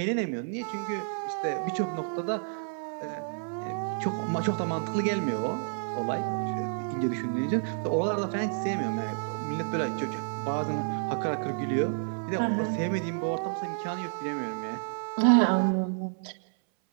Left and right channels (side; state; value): left; silent; 58 dB below the other